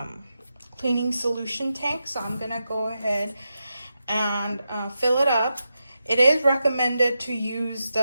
cleaning solution tank. So I'm gonna go ahead and fill it up. It is recommended to use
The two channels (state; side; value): inverted; both; correlation -0.89